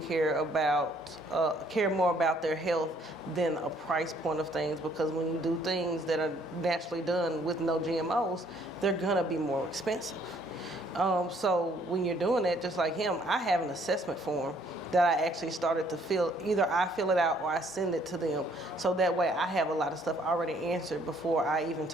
more about their health than a price point of things, because when you do things that are naturally done with no GMOs, they're gonna be more expensive. So when you're doing that, just like him, I have an assessment form that I actually started to fill. Either I fill it out or I send it to them. So that way I have a lot of stuff already answered before I even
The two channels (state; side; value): normal; both; correlation 0.64